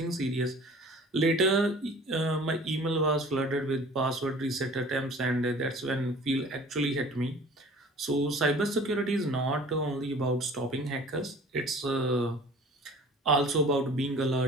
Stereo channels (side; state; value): both; normal; correlation 0.46